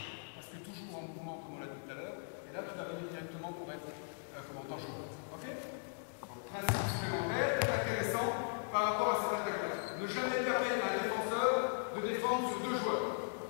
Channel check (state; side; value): silent; right; digital silence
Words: parce que toujours en mouvement comme on l'a dit tout à l'heure, et là tu vas venir directement pour être comme en tant que joueur. Ok? Donc principe supplémentaire, très intéressant par rapport à cette attaque-là. Ne jamais permettre à un défenseur de défendre sur deux joueurs.